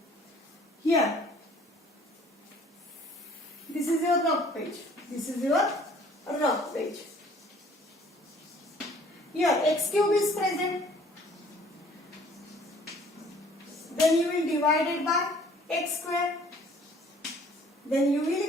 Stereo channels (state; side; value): normal; both; correlation 0.55